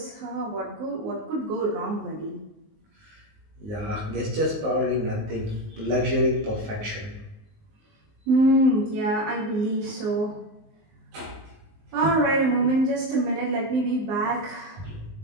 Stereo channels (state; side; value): late; left; 19 ms